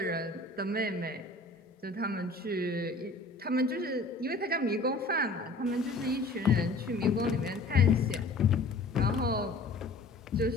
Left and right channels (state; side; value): quieter; right; 3.3 dB